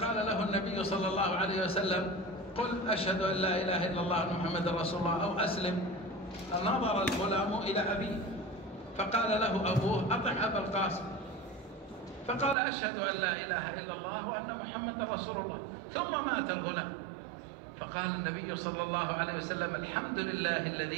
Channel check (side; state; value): left; drops out; at 12.6 s